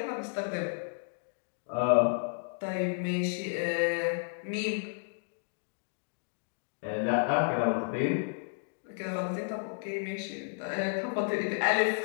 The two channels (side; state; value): right; silent; digital silence